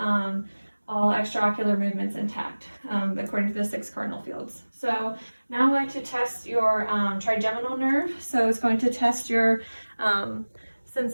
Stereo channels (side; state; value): both; inverted; correlation -1.00